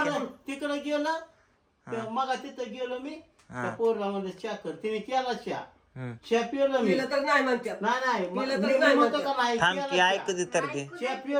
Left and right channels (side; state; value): both; identical; correlation 1.00